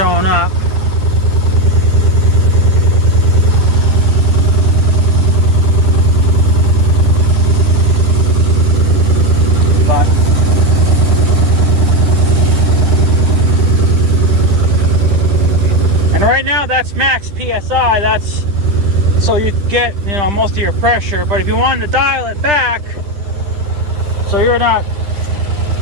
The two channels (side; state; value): left; late; 10 ms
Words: up. But and right now that's max PSI. That's so you get, you know, most of your pressure. But if you wanted to dial it back so you're not